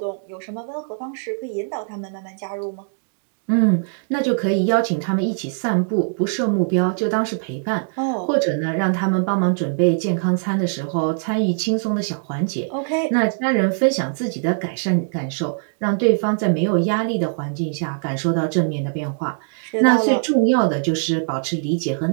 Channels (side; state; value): left; silent; digital silence